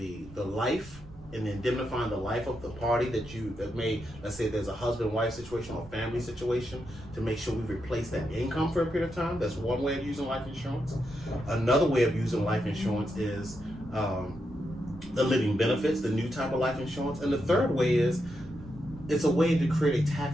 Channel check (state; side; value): noise; right; rumble, 19 dB below the sound